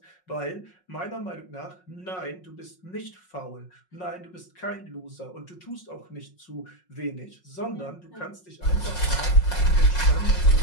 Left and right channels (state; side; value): late; right; 5.5 ms